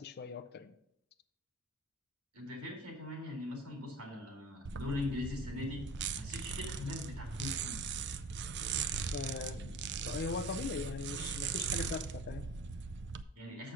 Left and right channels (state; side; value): normal; both; correlation 0.39